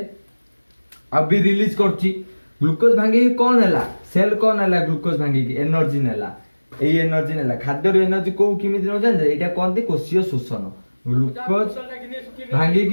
अभी रिलीज करची। ग्लूकोज भांगी कौन है सेल कौन है ग्लूकोज भांगी की एनर्जी नेला। एई एनर्जी नेला खाद्य एनर्जी को किमिति न जान एटा कोन कोशीय शोषण। ग्लूकोज भांगी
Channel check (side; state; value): both; inverted; correlation -1.00